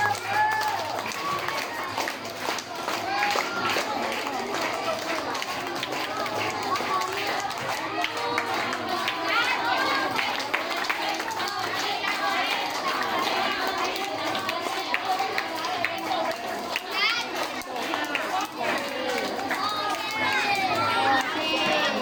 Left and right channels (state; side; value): identical; both; correlation 1.00